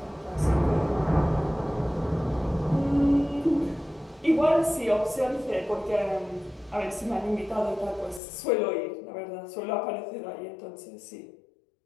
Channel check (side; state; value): right; drops out; at 8.2 s